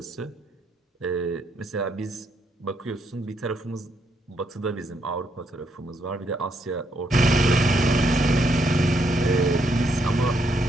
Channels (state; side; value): normal; both; correlation 0.76